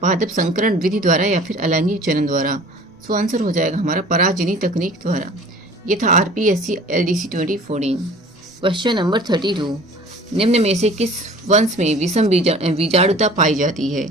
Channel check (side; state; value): both; normal; correlation 0.47